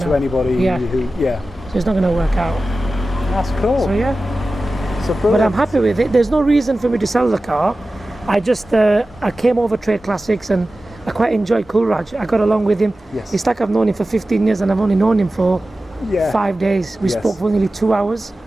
anybody who. So it's not going to work out. That's cool. So but I'm happy with it. There's no reason for me to sell the car. I just I came over Trade Classics, and I quite enjoyed Coolraj. I got along with him. It's like I've known him for 15 years, and I've only known him for 5 days. We spoke for nearly 2 hours,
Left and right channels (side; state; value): both; normal; correlation 0.95